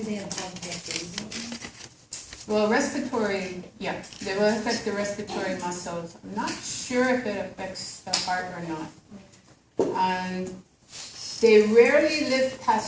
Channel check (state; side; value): identical; both; correlation 1.00